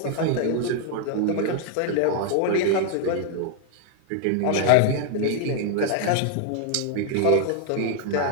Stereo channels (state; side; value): different; both; correlation 0.00